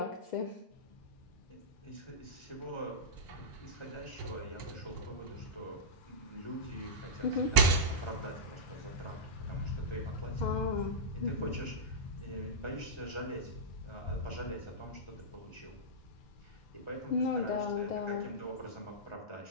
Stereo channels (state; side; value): late; right; 1.0 ms